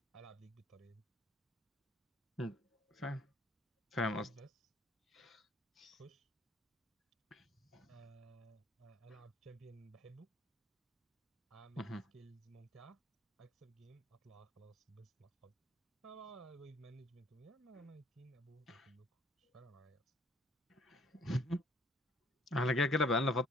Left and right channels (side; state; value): both; normal; correlation 0.60